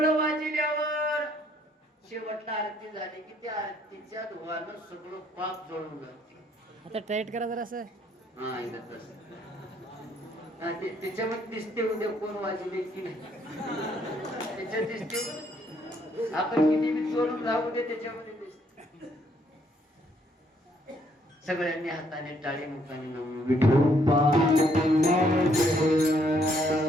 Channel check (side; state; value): both; normal; correlation 0.68